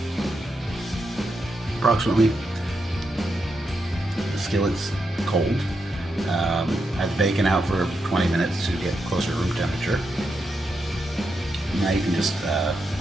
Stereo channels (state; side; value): normal; both; correlation 0.85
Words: Approximately. The skillet's cold. I have the bacon out for 20 minutes to get closer to room temperature. Now you can just